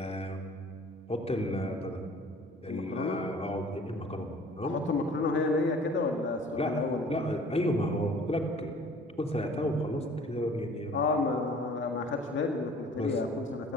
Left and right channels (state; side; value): normal; both; correlation 0.50